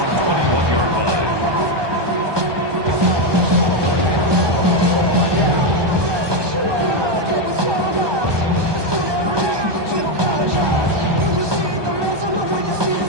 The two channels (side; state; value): left; late; 1.2 ms